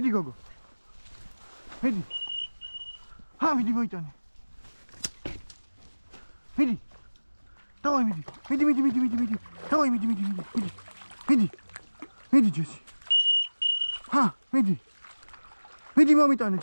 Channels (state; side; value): inverted; both; correlation -1.00